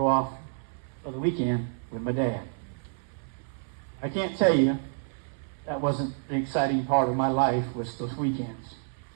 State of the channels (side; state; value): left; silent; 59 dB below the other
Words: off for the weekend with my dad. I can't tell you that wasn't the exciting part of my life, was those weekends.